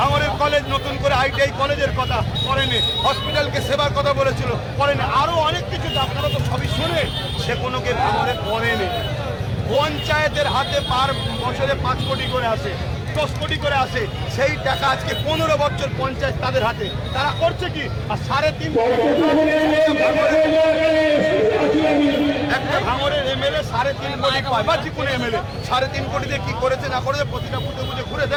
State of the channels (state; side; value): identical; both; correlation 1.00